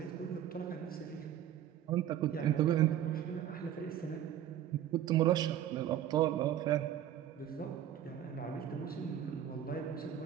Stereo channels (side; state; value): left; quieter; 10.9 dB